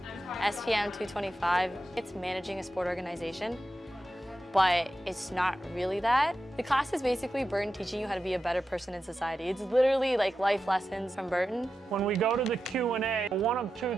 SPM 225. It's managing a sport organization, but it's not really that. The class is basically Burton teaching you how to be a better person in society. It's literally like life lessons from Burton. When we go to the Q&A, one of two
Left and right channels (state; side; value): normal; both; correlation 0.90